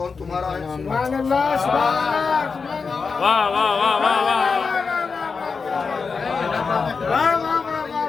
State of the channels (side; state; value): right; quieter; 5.0 dB